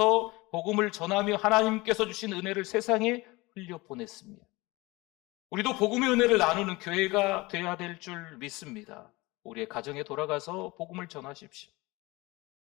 복음을 전하며 하나님께서 주신 은혜를 세상에 흘려보냈습니다. 우리도 복음의 은혜를 나누는 교회가 되어야 될 줄 믿습니다. 우리의 가정에 돌아가서 복음을 전하십시오.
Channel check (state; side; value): quieter; right; 22.6 dB